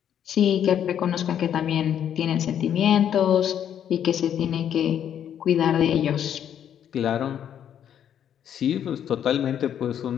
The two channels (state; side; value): quieter; right; 9.5 dB